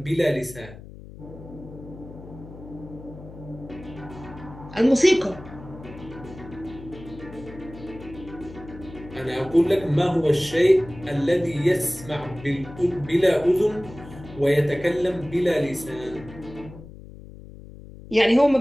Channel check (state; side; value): noise; left; hum, 16 dB below the sound